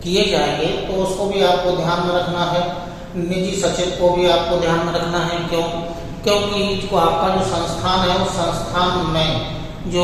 किए जाएंगे, तो उसको भी आपको ध्यान में रखना है। निजी सचिव को भी आपको ध्यान में रखना है। क्योंकि जो आपका जो संस्थान है उस संस्थान में जो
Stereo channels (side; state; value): both; identical; correlation 1.00